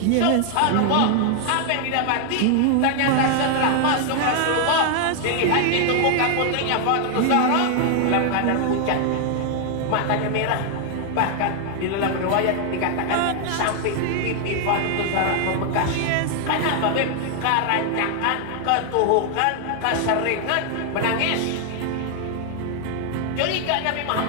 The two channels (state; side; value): different; both; correlation 0.00